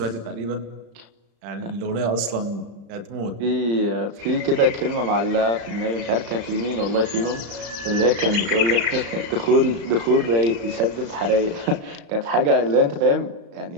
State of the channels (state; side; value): late; left; 35 ms